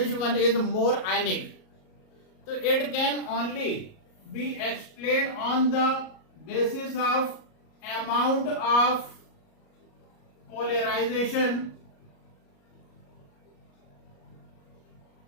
one is more ionic. So it can only be explained on the basis of amount of polarization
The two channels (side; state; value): right; late; 38 ms